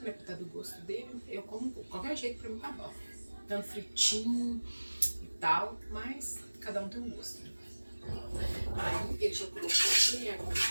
Pra tá do gosto dele. Eu como qualquer jeito, pra mim tá bom. Tanto fritinho e tal, mas cada um tem um gosto, né? Aí ele já colocou aqui a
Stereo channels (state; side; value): inverted; both; correlation -1.00